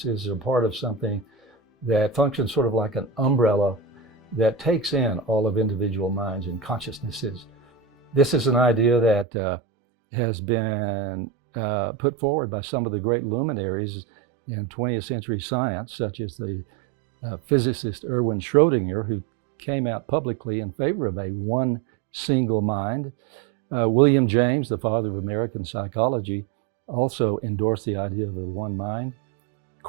are part of something that functions sort of like an umbrella that takes in all of individual minds and consciousnesses. This is an idea that has been put forward by some of the great luminaries in 20th century science, such as the physicist Erwin Schrödinger, who came out publicly in favor of a one single mind. William James, the father of American psychology, also endorsed the idea of the one mind.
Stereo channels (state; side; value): drops out; left; at 9.2 s